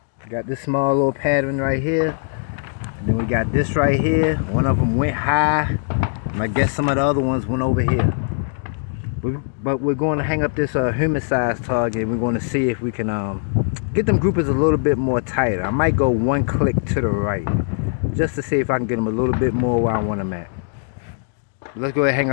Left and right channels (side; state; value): right; silent; digital silence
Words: Got this small little pattern right here. And then we got this right here. One of them went high. And I guess some of the other ones went over here. But we're going to hang up this human-sized target. We're going to see if we can get them groupers a little bit more tighter. I might go one click to the right. just to see if I can get them a little bit more where I want them at. Let's go ahead and hang